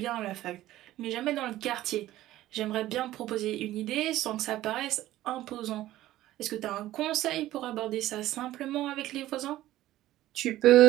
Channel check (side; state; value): left; quieter; 14.9 dB